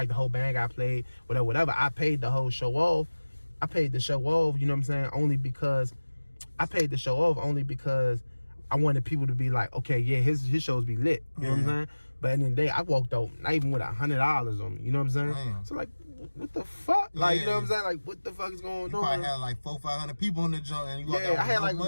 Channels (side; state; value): both; inverted; correlation -1.00